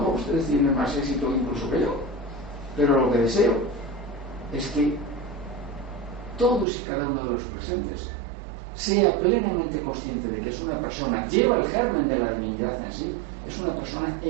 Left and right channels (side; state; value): left; drops out; at 6.7 s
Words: ustedes tienen más éxito incluso que yo, pero lo que deseo es que todos y cada uno de los presentes sea plenamente consciente de que es una persona, lleva el germen de la divinidad en sí, es una persona